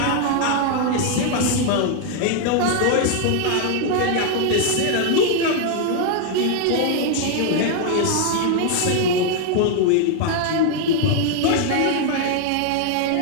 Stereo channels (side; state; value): both; different; correlation 0.00